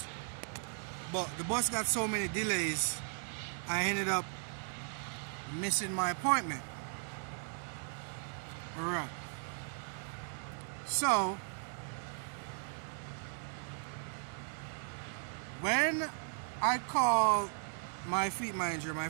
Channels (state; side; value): silent; left; 53 dB below the other